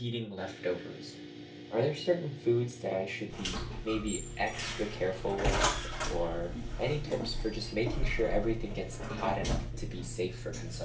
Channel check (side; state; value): both; identical; correlation 1.00